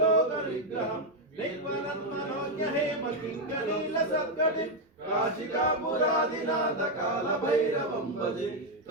निर्मलन्मनोज्ञ हेमकिङ्करीलसत्कटिं काशिकापुरादिनाथ कालभैरवं भजे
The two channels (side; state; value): both; normal; correlation 0.03